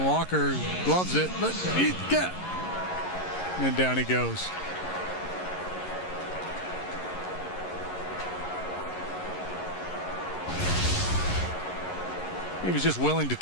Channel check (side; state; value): right; late; 11 ms